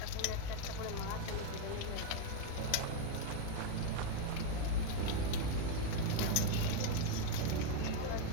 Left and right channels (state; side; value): different; both; correlation 0.01